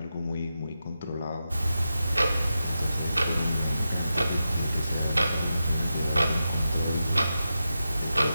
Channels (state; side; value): inverted; both; correlation -0.90